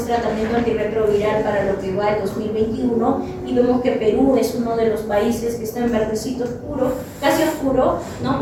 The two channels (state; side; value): identical; both; correlation 1.00